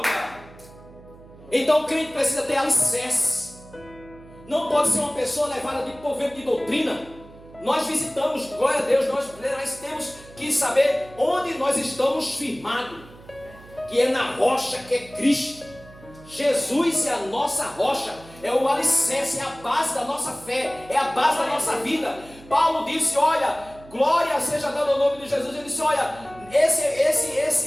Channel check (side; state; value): right; noise; hum, 21 dB below the sound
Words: Então o crente precisa ter alicerce. Não pode ser uma pessoa levada por vento de doutrina. Nós visitamos, glória a Deus, nós temos que saber onde nós estamos firmados, que é na rocha, que é Cristo. Jesus é a nossa rocha, é o alicerce, é a base da nossa fé, é a base da nossa vida. Paulo disse: olha, glória seja dada ao nome de Jesus. Ele disse: olha,